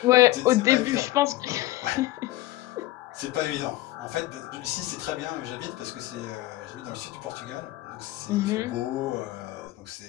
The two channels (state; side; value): quieter; right; 17.0 dB